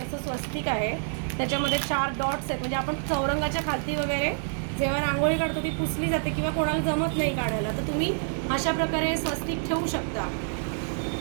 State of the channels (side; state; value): left; silent; digital silence